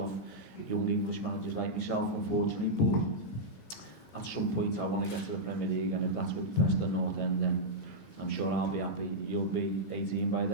young English managers like myself, unfortunately. But at some point I want to get to the Premier League, and if that's with Preston North End, then I'm sure I'll be happy. You'll be 18 by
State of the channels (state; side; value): late; right; 14 ms